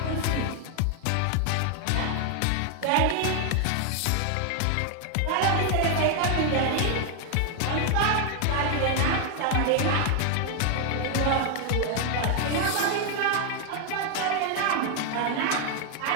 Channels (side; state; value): both; different; correlation 0.00